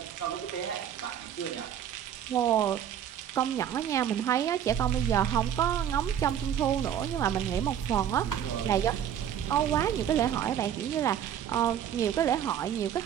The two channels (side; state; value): left; quieter; 9.7 dB